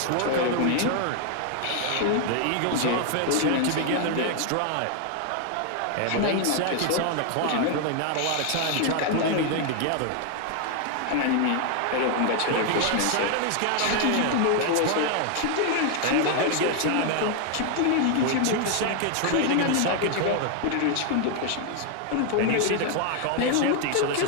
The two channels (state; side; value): different; both; correlation 0.00